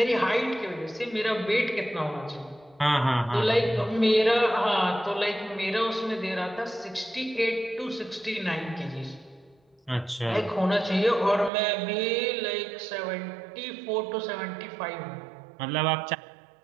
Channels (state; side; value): drops out; left; at 11.5 s